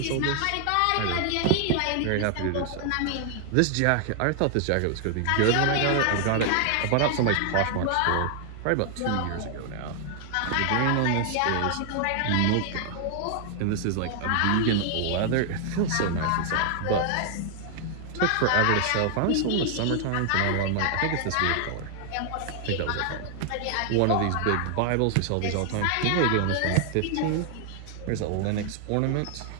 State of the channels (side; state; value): both; different; correlation 0.00